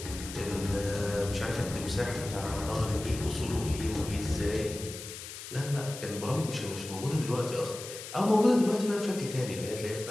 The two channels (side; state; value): left; noise; hiss, 11 dB below the sound